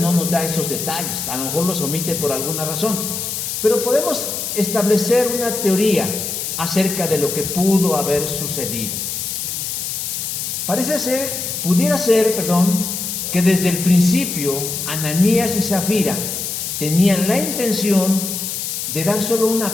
nos da esos detalles, a lo mejor los omite por alguna razón, pero podemos establecer una teoría acerca de lo que pudo haber sucedido. Pudiera ser, que desde el principio Ananías y Zafira tenían la intención de dar solo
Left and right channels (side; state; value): left; noise; hiss, 4 dB below the sound